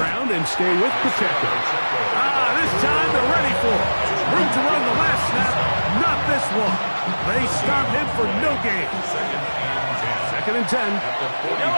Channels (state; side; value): inverted; both; correlation -1.00